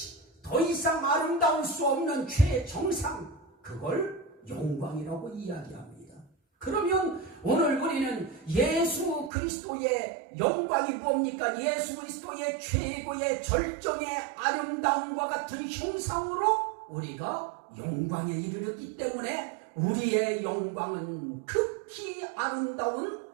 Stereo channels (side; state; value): left; drops out; at 9.3 s